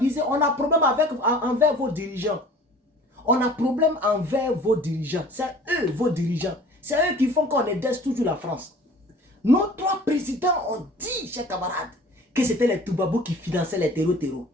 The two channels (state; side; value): normal; both; correlation 0.47